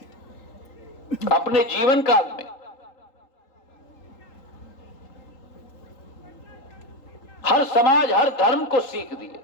अपने जीवन काल में हर समाज, हर धर्म को सीख दिए।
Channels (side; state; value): right; late; 3.8 ms